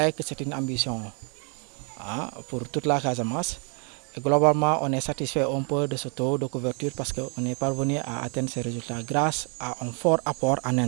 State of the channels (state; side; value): quieter; left; 38.5 dB